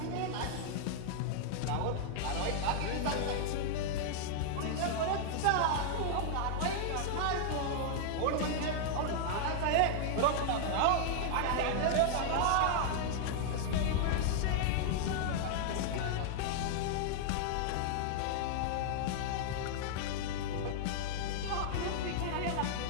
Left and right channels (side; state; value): both; different; correlation -0.01